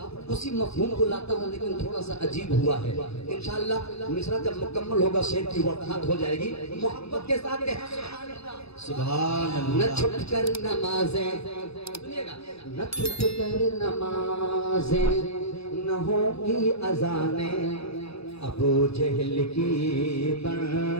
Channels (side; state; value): right; late; 0.78 ms